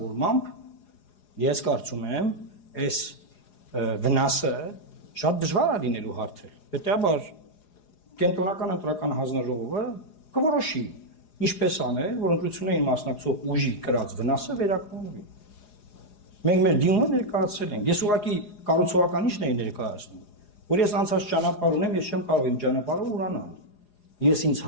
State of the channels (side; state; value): right; late; 4.8 ms